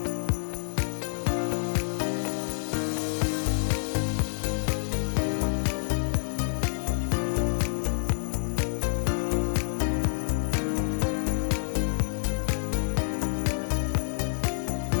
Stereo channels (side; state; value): right; silent; 60 dB below the other